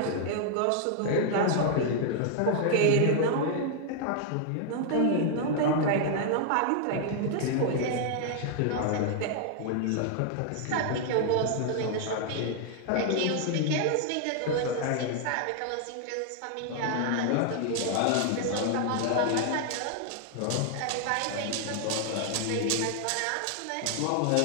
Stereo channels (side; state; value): both; different; correlation 0.00